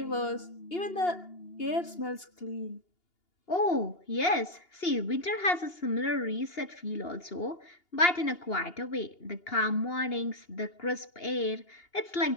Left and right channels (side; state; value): right; late; 2.8 ms